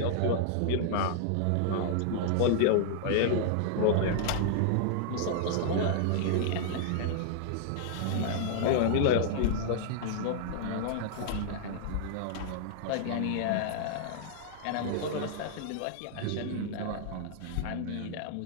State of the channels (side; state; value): both; different; correlation -0.01